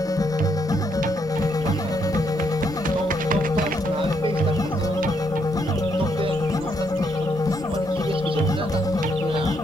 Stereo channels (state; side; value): normal; both; correlation 0.75